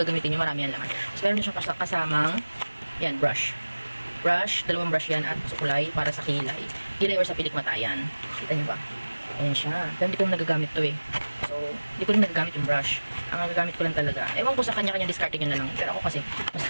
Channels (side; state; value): both; inverted; correlation -1.00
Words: gagamitin nyo, marami yan laman. So, meron din siyang kasamang, yan, brush. Brush, dalawang brush yan at sukulay para sa kilay. Kilay or sa pilikmatayan. Kita nyo ba? Ayan siya. Pero hindi ko nagagamit to eh. So, hindi ko rin nagagamit yung brush. Ang nagagamit ko lang talaga. Ewan ko sa kanya-kanya discarding yun na lang. Pero ako kasi, mas